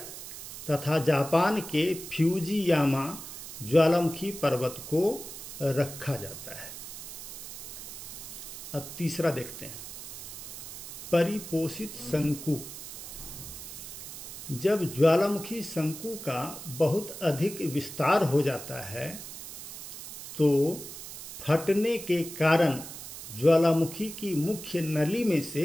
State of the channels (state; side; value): noise; right; hiss, 11 dB below the sound